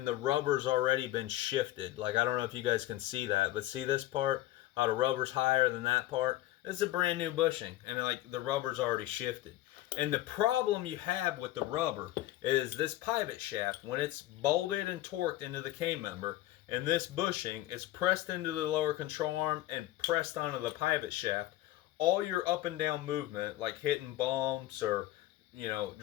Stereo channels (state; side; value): quieter; right; 15.7 dB